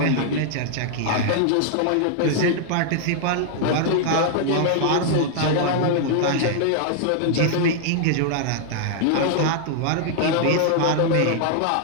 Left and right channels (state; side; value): different; both; correlation -0.01